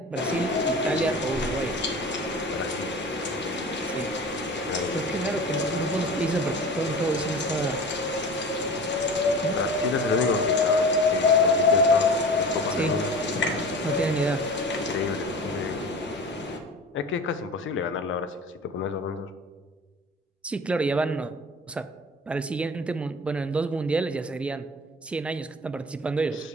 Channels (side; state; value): both; normal; correlation 0.37